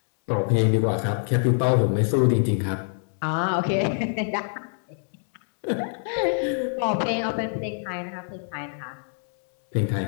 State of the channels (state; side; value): silent; right; 61 dB below the other